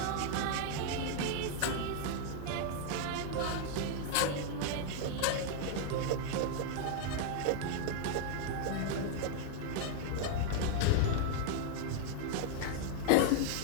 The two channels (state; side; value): different; both; correlation 0.00